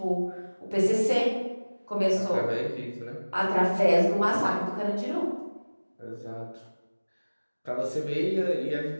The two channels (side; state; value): both; inverted; correlation -1.00